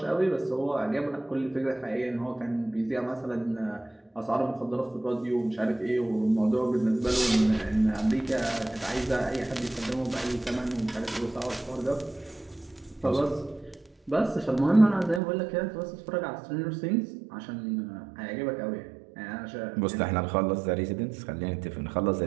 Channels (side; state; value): left; drops out; at 15.2 s